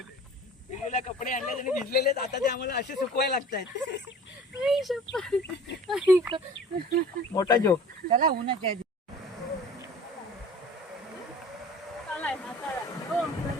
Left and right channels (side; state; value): both; normal; correlation 0.44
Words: पिलूला कपडे आणले आणि भिजलेले, आता ते आम्हाला असे सुकवायला लागतात. मोठा जोक. चला उन्हाच्या